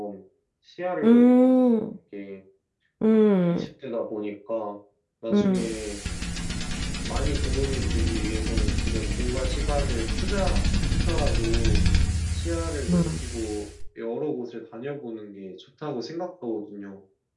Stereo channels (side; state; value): both; identical; correlation 1.00